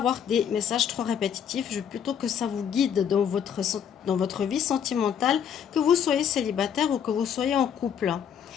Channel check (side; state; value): right; quieter; 8.3 dB